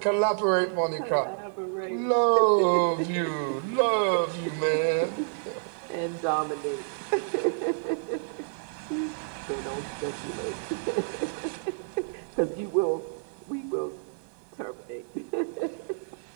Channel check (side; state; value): left; silent; digital silence